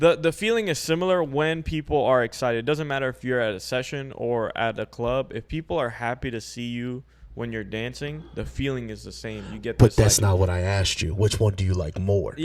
feeling is similar when people are excited. It doesn't matter if you're at a session or at a club. If people are happy to see you when you're dancing, the feeling is the same. You get But this, that's like- not what I asked you. Which one do you like more?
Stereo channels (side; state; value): both; identical; correlation 1.00